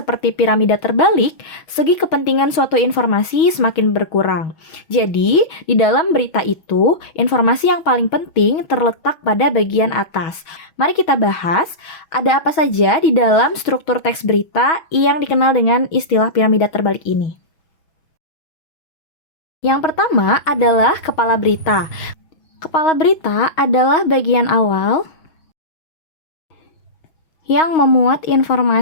piramida terbalik, segi kepentingan suatu informasi semakin berkurang. Jadi, di dalam berita itu, informasi yang paling penting terletak pada bagian atas. Mari kita bahas, ada apa saja di dalam struktur teks berita yang dikenal dengan istilah piramida terbalik ini. Yang pertama adalah kepala berita. Kepala berita adalah bagian awal yang memuat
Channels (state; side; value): late; right; 6.3 ms